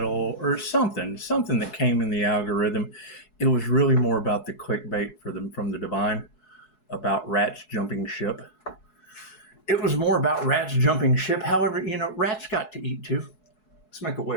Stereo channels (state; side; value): late; right; 4.7 ms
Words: or something that came in the algorithm. It was really more about the clickbait from the divine, about rats jumping ship. It was more about rats jumping ship. However, rats got to eat too. Let's make a